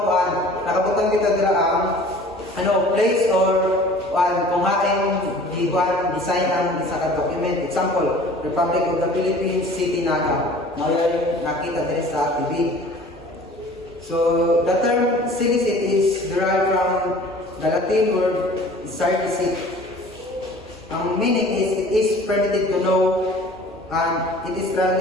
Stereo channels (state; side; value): normal; both; correlation 0.47